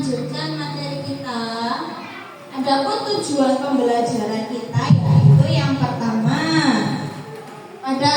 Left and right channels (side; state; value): both; identical; correlation 1.00